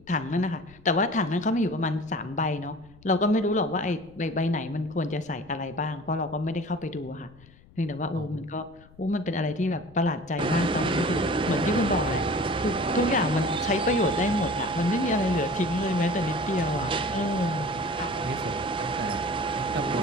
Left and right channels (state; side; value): noise; left; rumble, 25 dB below the sound